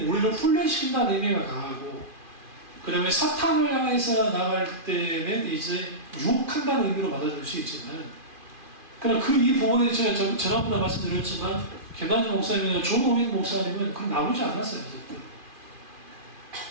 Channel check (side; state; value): left; late; 2.4 ms